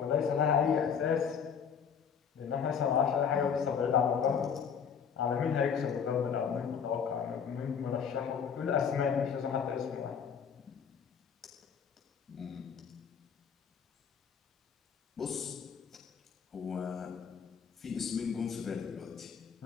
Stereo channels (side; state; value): right; quieter; 7.1 dB